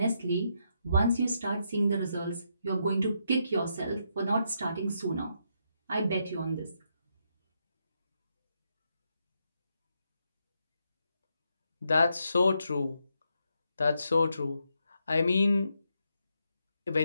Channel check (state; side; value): inverted; both; correlation -0.80